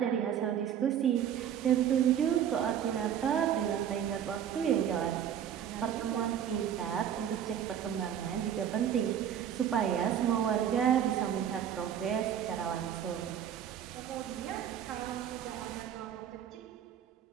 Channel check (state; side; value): quieter; left; 9.4 dB